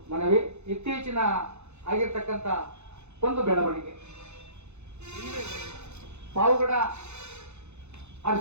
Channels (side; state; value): left; late; 0.81 ms